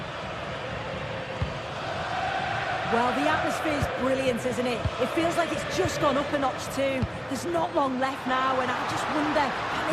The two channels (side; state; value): both; identical; correlation 1.00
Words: Well, the atmosphere's brilliant, isn't it? It feels like it's just gone up a notch too. There's not long left now, and I just wonder, can